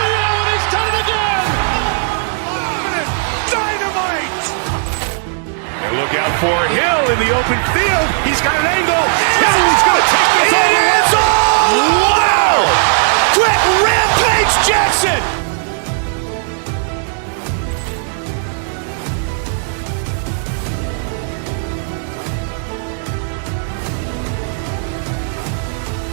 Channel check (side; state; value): left; silent; 69 dB below the other